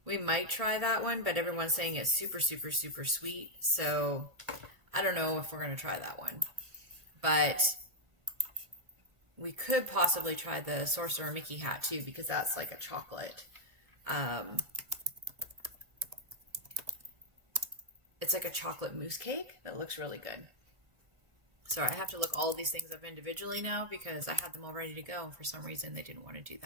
We might try that one, but everyone's saying it's super, super, super sweet. So I don't know if we're going to try that one. But we could possibly try the Sorcerer Mickey hat too, because that's like a chocolate. It's like a chocolate mousse cake that looks really good. Sorry, I have to look all of these things up individually now because I had them all ready to go. And for some reason, they didn't want to do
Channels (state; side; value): late; left; 1.7 ms